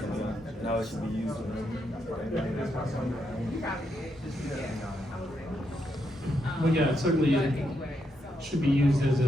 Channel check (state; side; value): normal; both; correlation 0.80